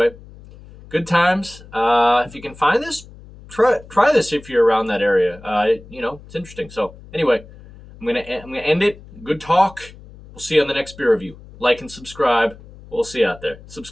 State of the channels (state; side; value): noise; left; hum, 20 dB below the sound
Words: good times. If you can find this, try this if you're around that area. It's interesting. So anyway, I'm gonna end it. Good talk. We'll see you on the next beer review. Like and subscribe. We'll see you out there.